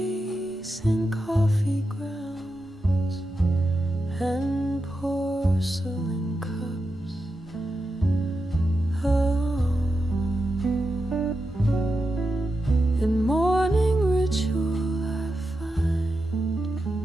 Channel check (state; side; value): normal; both; correlation 0.88